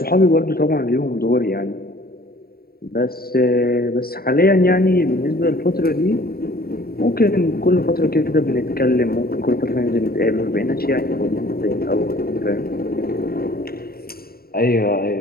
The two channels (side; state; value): right; late; 0.44 ms